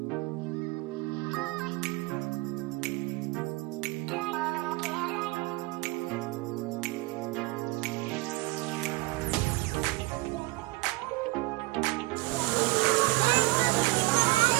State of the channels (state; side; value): quieter; left; 22.1 dB